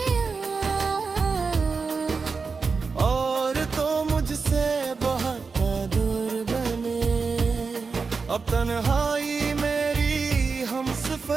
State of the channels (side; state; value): left; quieter; 4.8 dB